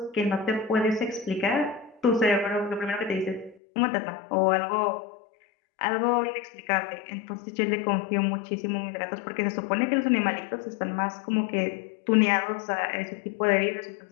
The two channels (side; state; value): right; drops out; at 3.6 s